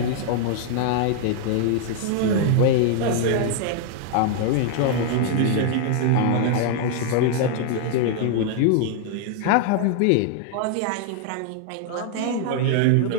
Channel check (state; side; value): different; both; correlation 0.00